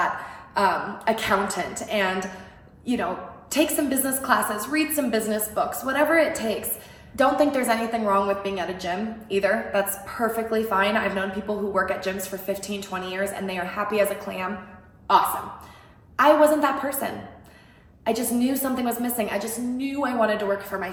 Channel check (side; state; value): both; identical; correlation 1.00